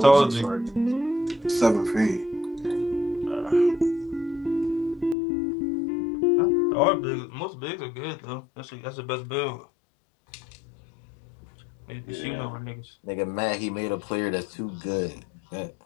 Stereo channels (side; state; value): right; drops out; at 5.2 s